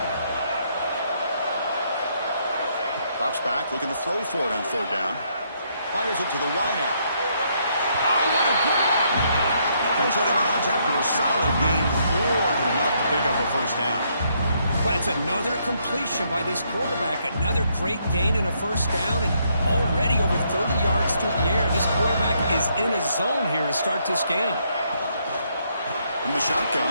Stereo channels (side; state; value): both; inverted; correlation -0.73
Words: Drops back, looking to throw for it on third down. Fires it to the wideout. Oh, what a grab! Heads out of bounds after a solid gain, more than enough to pick up a first down. Well, it's another completion by this quarterback. Another great gain and a first down, and already over 30 yards through the air. This quarterback is in a zone here to start this game. From the